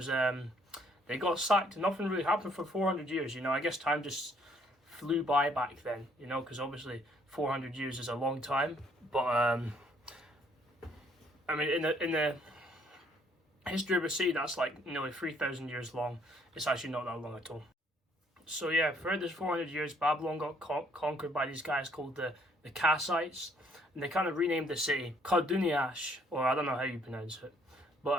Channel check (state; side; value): normal; both; correlation 0.65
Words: they got sacked, nothing really happened for 400 years, I guess time just flew by back then, because obviously 400 years is a long time, but I mean, in the history of a city that's like nearly 3,000 years long, it's actually not that long at all. So yeah, throughout this 400 years, Babylon got conquered by these guys called the Kassites, and they kind of renamed the city Karduniash, or I don't know how you pronounce it,